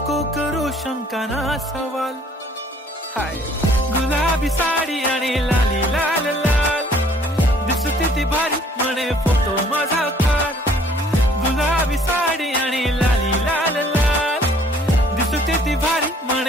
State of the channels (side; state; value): both; normal; correlation 0.58